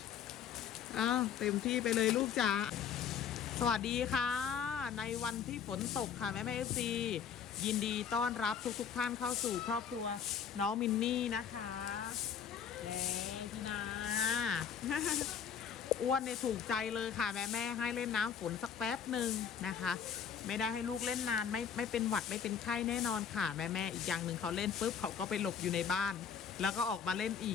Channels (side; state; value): right; quieter; 7.6 dB